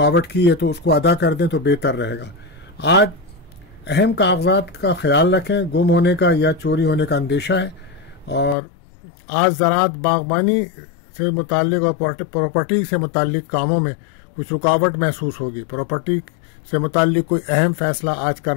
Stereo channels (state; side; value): drops out; right; at 8.6 s